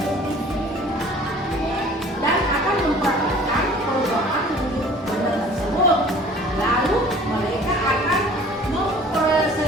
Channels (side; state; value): both; normal; correlation 0.49